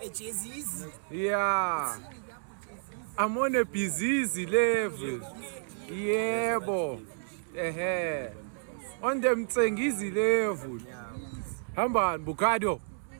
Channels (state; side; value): silent; left; digital silence